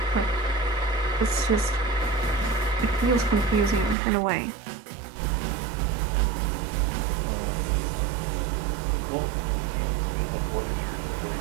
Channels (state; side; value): drops out; left; at 4.0 s